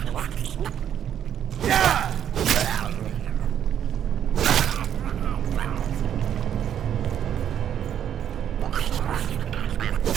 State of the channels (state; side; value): quieter; left; 9.6 dB